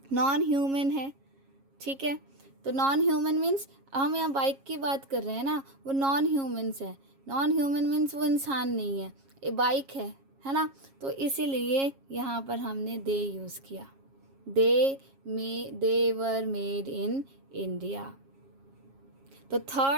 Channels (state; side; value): late; left; 7.3 ms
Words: नॉन ह्यूमन है। ठीक है, तो नॉन ह्यूमन मीन्स हम यहाँ बाइक की बात कर रहे हैं ना, वो नॉन ह्यूमन्स है। नॉन ह्यूमन मीन्स वो इंसान नहीं है, ये बाइक है ना। तो इसीलिए यहाँ पर हमने दे यूज़ किया, they were made in India. तो